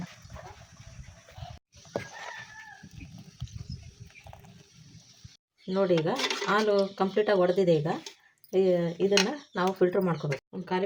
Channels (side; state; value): both; identical; correlation 1.00